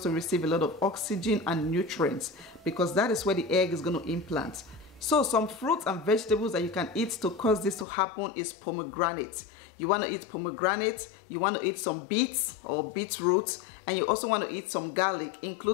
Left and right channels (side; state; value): right; drops out; at 7.9 s